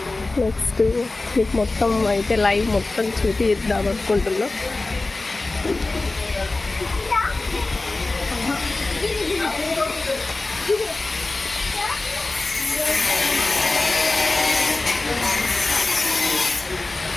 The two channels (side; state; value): right; quieter; 3.2 dB